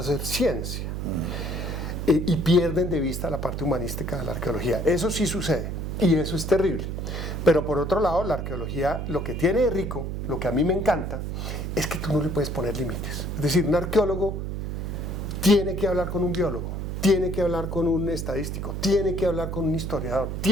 ciencia. Y pierden de vista la parte humanística de la arqueología. Eso sí sucede. Y eso es terrible. Pero por otro lado, la arqueología, lo que tiene de rico, lo que a mí me encanta, es que tú no le puedes poner límites. Es decir, un arqueólogo tiene que hablar con un biólogo. tiene que hablar con un estadístico, tiene que hablar con un historiador,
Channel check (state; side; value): noise; right; hum, 4 dB below the sound